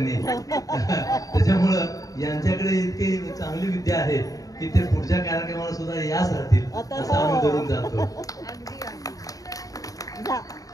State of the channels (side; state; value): right; late; 0.17 ms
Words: त्याच्यामुळं यांच्याकडे इतकी चांगली विद्या आहे की ते पुढच्या कार्यक्रमाला सुद्धा याच राहतील असं आम्ही धरून जातो.